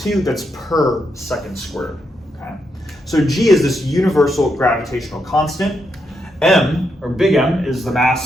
that's per second squared. Okay. So G is this universal gravitational constant. M, or big M, is the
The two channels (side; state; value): both; normal; correlation 0.81